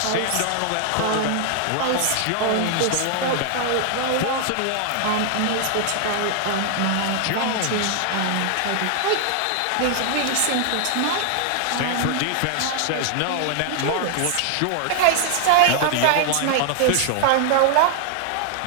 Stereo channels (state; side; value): different; both; correlation 0.00